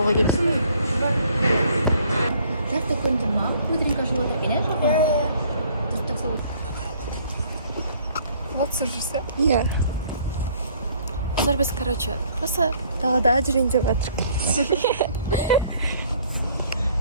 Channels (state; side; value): inverted; both; correlation -0.60